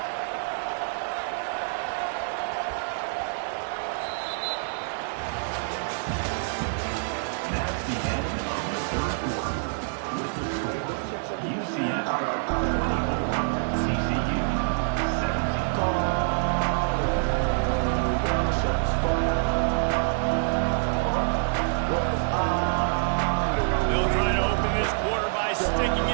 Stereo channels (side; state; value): left; silent; digital silence